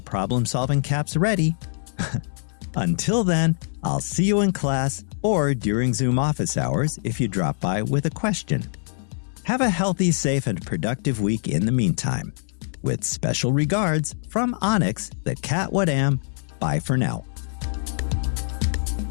problem-solving caps ready. Until then, I'll see you in class or during Zoom office hours if you drop by with a question. Have a healthy, safe, and productive week in the meantime. With special regards from Onyx, the cat what am. Bye for now.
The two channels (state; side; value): silent; right; digital silence